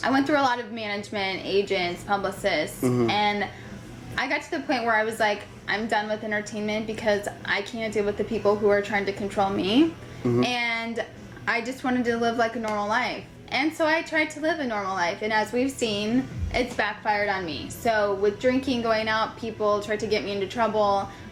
I went through a lot of management, agents, publicists, Mm-hmm. and I got to the point where I was like, I'm done with entertainment because I can't deal with the people who are trying to control me. Mm-hmm. And I just wanted to live like a normal life. And so I tried to live a normal life, and as we've seen, it's backfired on me. So with drinking, going out, people tried to get me into trouble.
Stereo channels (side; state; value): both; identical; correlation 1.00